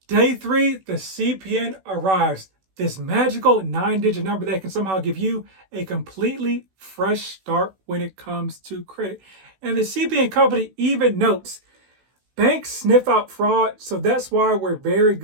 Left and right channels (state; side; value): late; left; 16 ms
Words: Day 3, the CPN arrives. This magical 9-digit number that can somehow give you a completely fresh start when it comes to credit. And the CPN company even notes, banks sniff out fraud, so that's why we're very